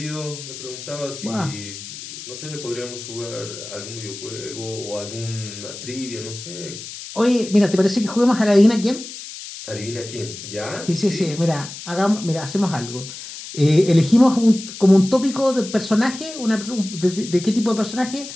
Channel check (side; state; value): left; noise; hiss, 12 dB below the sound